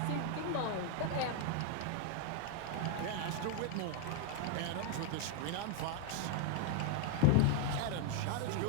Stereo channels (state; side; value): different; both; correlation 0.00